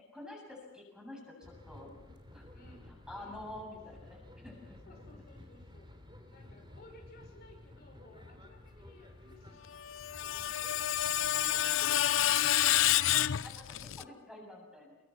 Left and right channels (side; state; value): right; quieter; 11.5 dB